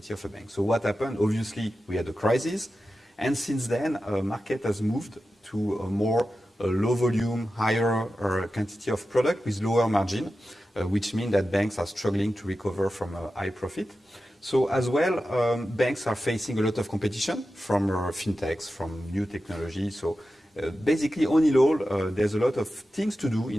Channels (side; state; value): both; normal; correlation 0.92